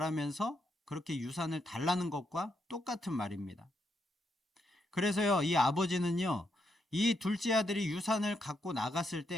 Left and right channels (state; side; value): normal; both; correlation 0.80